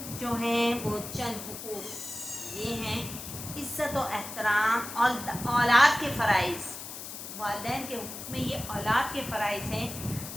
جو ہیں وہ چند حقوق یہ ہیں: عزت و احترام اور اولاد کے فرائض. والدین کے حقوق میں یہ اولاد کے فرائض ہیں:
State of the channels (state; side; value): noise; left; hiss, 10 dB below the sound